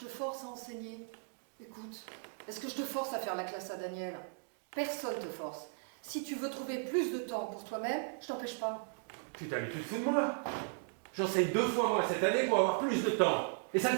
force à enseigner? Écoute, est-ce que je te force à faire la classe à Daniel? Personne te force. Si tu veux trouver plus de temps pour toi-même, je t'empêche pas. Putain, mais tu te fous de moi? J'enseigne 2 fois moins cette année pour avoir plus de temps. Et ça ne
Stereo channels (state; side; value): silent; left; 53 dB below the other